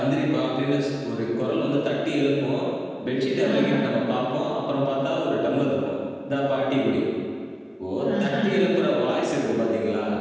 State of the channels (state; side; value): identical; both; correlation 1.00